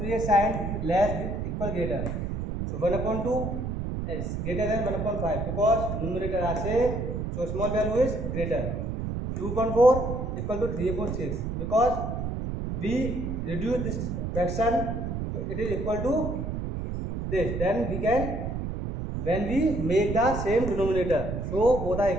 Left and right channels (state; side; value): noise; right; rumble, 3 dB below the sound